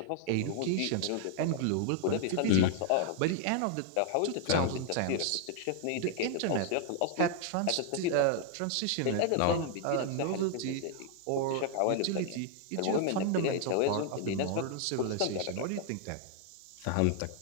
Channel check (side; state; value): both; different; correlation 0.00